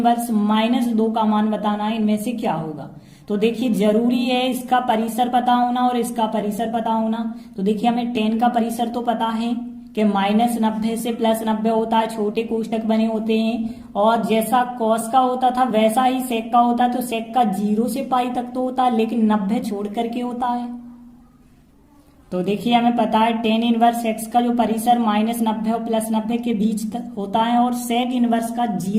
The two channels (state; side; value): identical; both; correlation 1.00